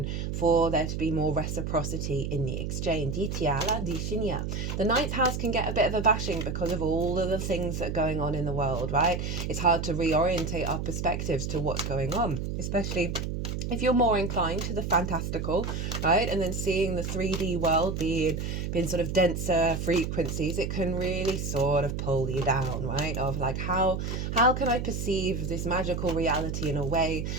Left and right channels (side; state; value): right; noise; hum, 3 dB below the sound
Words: for there to be more reciprocity in the exchange. The ninth house can get a bit of a bashing because of all of the things that are going on in the world, right? It's hard to reorientate our perspectives to what's going on, especially if you're more inclined to the fantastical, right? And then seeing the 3D world being sort of denser frequencies, it can really sort of pull you down, right? Of like, how can I perceive this magical reality in a way